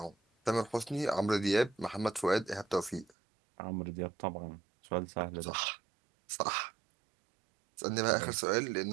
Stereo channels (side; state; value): left; drops out; at 3.1 s